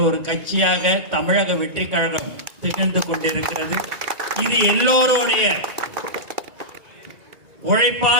ஒரு கட்சியாக தமிழக வெற்றி கழகம் திகழ்ந்து கொண்டிருக்கிறது. இது எல்லோருடைய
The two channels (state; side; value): late; left; 2.3 ms